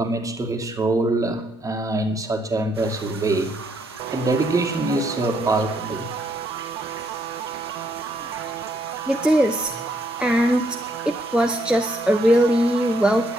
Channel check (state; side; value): normal; both; correlation 0.73